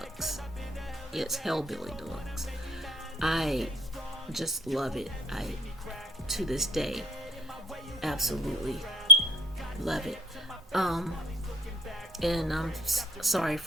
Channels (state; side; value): normal; both; correlation 0.50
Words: Yes, Hellbilly Deluxe. I just love it. To this day, absolutely love it. And I'm sorry